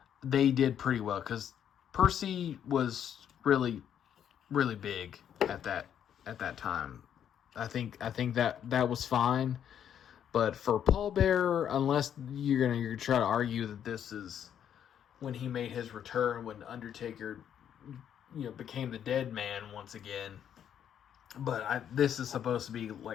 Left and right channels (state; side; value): quieter; right; 9.3 dB